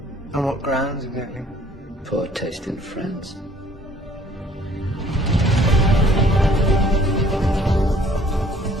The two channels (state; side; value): normal; both; correlation 0.57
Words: On what grounds, exactly? Poor taste in France.